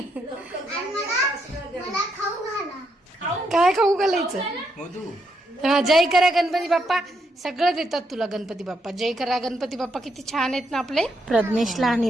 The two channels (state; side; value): normal; both; correlation 0.78